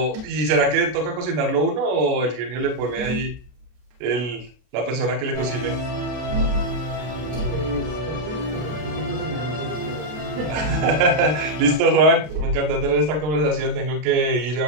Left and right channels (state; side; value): late; left; 33 ms